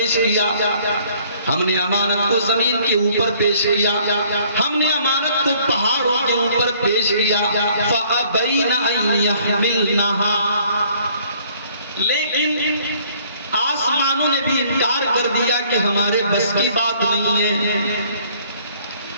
کیا، ہم نے امانت کو زمین کے اوپر پیش کیا، ہم نے امانت کو پہاڑوں کے اوپر پیش کیا۔ فَأَبَيْنَ أَن يَحْمِلْنَهَا، لیکن آسمانوں نے بھی انکار کر دیا کہ ہمارے بس کی بات نہیں ہے،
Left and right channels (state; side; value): inverted; both; correlation -0.59